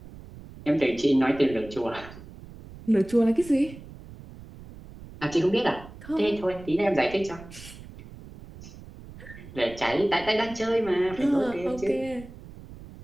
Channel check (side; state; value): right; noise; rumble, 17 dB below the sound